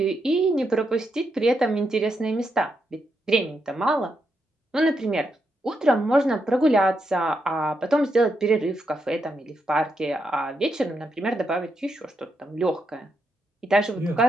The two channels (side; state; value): both; normal; correlation 0.82